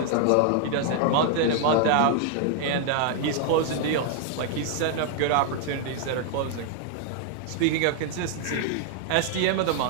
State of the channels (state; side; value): different; both; correlation 0.00